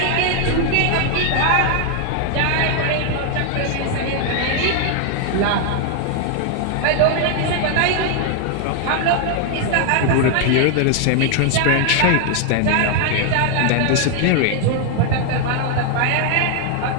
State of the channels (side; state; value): both; different; correlation 0.00